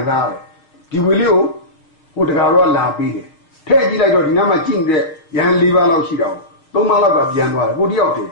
စားရတယ်ဒီဝေလေးကိုဟိုတကာတော့လာပြီးတယ်ထဲကြည့်လိုက်တော့ဒီနားမှာကြည့်နေတဲ့ရန်၄ပါးလောက်ရှိတော့၃ပါးလောက်ကပြန်သွားတယ်ကိုတယောက်တည်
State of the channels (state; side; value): late; right; 6.3 ms